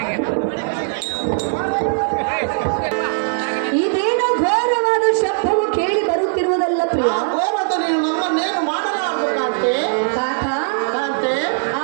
ಇದೇನೋ ಘೋರವಾದ ಶಬ್ದವು ಕೇಳಿ ಬರುತ್ತಿರುವುದಲ್ಲ ಪ್ರಿಯ. ಆ ಘೋರದ ನೀನು ನಮ್ಮನ್ನೇನು ಮಾಡಲಾರದು ಕಾಂತೆ. ಕಾಂತ, ಕಾಂತೆ,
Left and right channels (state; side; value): silent; left; digital silence